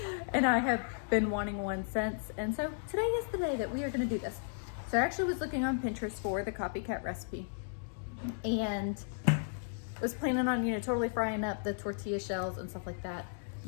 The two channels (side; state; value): right; silent; digital silence